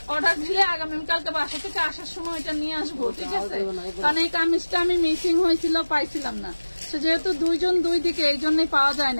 অর্ডার দিলে আগামীকালকে বাসা থেকে আসার সময় এটা নিয়ে আসবো, ঠিক আছে, কারণ এই কামিজটা আমি মিসিং হয়েছিল, পাইছিলাম না, তো যেহেতু দুইজন দুই দিকে এই জন্যই পাওয়া যায়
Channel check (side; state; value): both; inverted; correlation -1.00